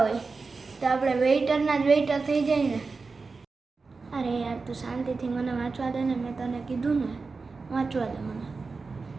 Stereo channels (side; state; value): left; quieter; 4.3 dB